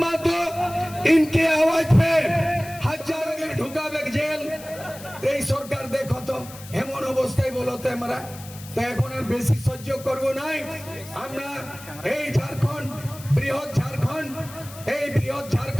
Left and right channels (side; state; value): left; noise; hiss, 17 dB below the sound